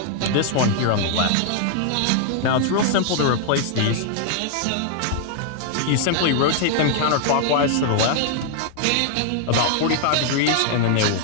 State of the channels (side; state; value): both; different; correlation 0.00